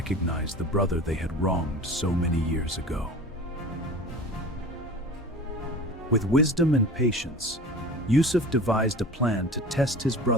the brother they had wronged so many years ago. With wisdom and patience, Yusuf devised a plan to test his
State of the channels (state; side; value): normal; both; correlation 0.38